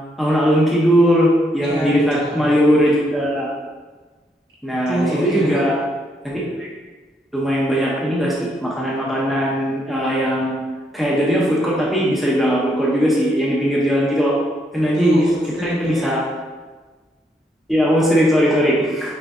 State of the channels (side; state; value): both; normal; correlation 0.75